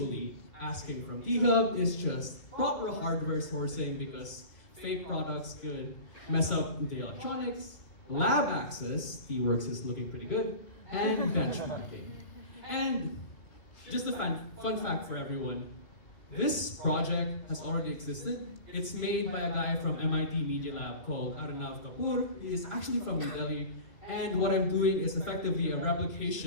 asking from THub is just proper hardware sourcing, because fake products could mess up the electronics, lab access, T-Works is looking pretty good, and benchmarking. And just a fun fact for everyone, this project has already existed. It's made by a guy from MIT Media Lab called Arnav Kapoor. He is actually from New Delhi, and what I'm doing is effectively a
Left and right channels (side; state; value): right; late; 2.2 ms